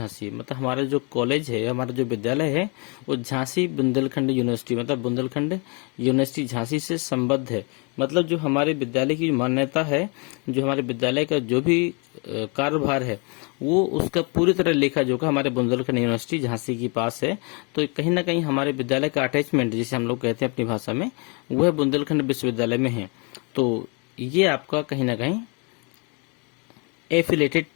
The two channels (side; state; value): right; quieter; 33.3 dB